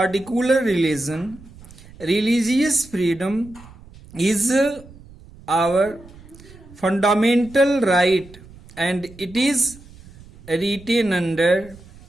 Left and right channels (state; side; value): noise; right; rumble, 21 dB below the sound